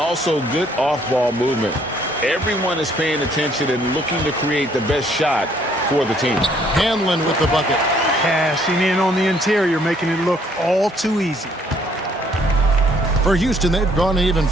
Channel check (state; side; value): normal; both; correlation 0.64